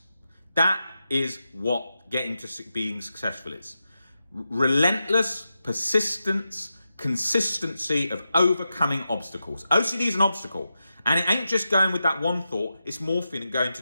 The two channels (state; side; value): inverted; both; correlation -0.89